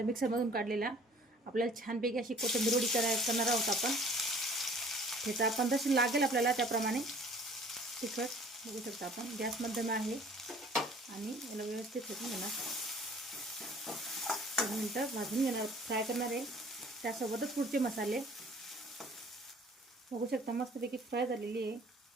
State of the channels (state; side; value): normal; both; correlation 0.52